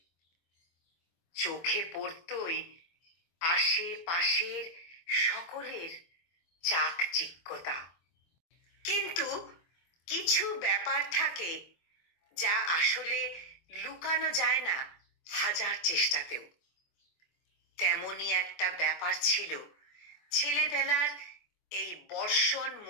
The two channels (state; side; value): late; right; 24 ms